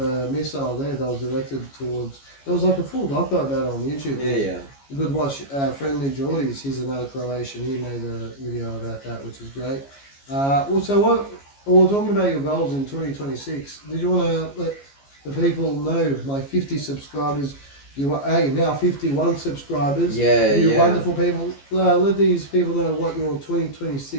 missile there that was directed towards. There was like a full doco about it on YouTube. Yeah. good watch. Friendly Geordies, he's another Croatian. He made a video about that, which is great. Also, what we're talking about your goals in 2026. Did you want to let the people know my 50 subscribers? You are now 51 subscribers. Yeah, you yeah. wonderful people. Let these people know what your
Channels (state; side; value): late; right; 14 ms